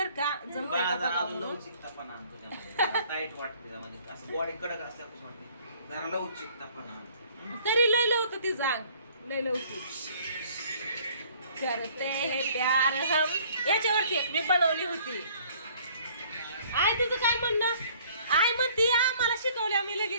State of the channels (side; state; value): both; inverted; correlation -0.57